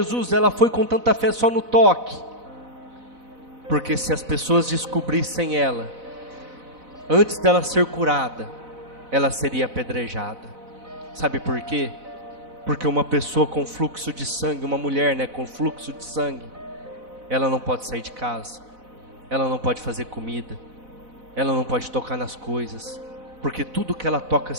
Ela foi com tanta fé só no toque. Porque se as pessoas descobrissem ela, antes dela ser curada, ela seria apedrejada. Sabe por quê? Porque uma pessoa com fluxo de sangue, uma mulher, né, com fluxo de sangue, ela não pode sair de casa, ela não pode fazer comida, ela não pode tocar nas coisas, porque tudo que ela toca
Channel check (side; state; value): left; late; 4.0 ms